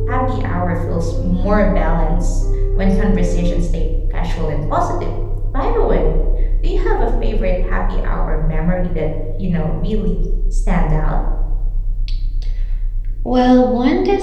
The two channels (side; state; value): both; identical; correlation 1.00